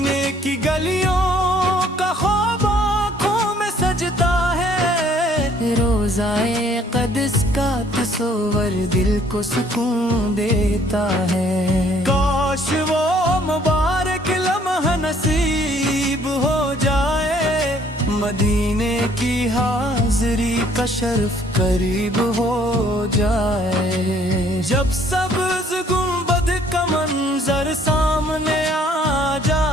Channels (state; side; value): normal; both; correlation 0.61